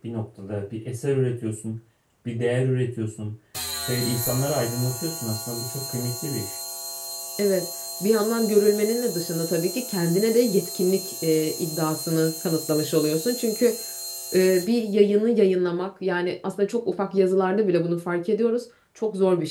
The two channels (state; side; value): identical; both; correlation 1.00